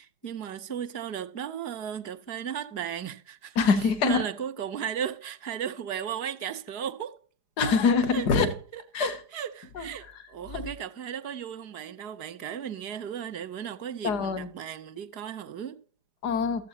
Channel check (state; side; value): late; right; 4.9 ms